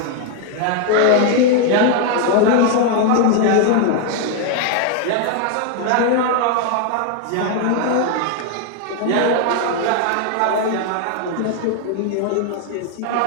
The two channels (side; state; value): both; different; correlation 0.01